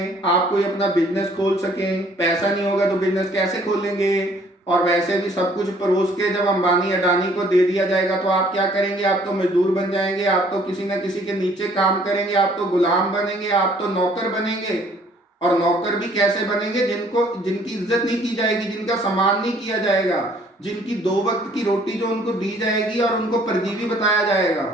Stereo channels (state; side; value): normal; both; correlation 0.60